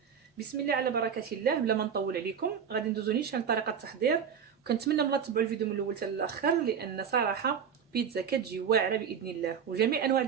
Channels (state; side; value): quieter; left; 7.4 dB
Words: بسم الله على بركه الله. بلا ما نطول عليكم غادي ندوزو نيشان طريقه التحضير، وكنتمنى ملا تبعوا الفيديو من الاول حتى الاخر، لان صراحه بيتزا كتجي واعره باذن الله. وجميع انواع